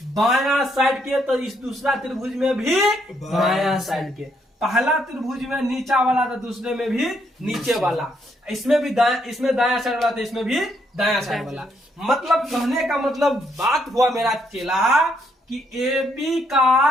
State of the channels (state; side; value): normal; both; correlation 0.73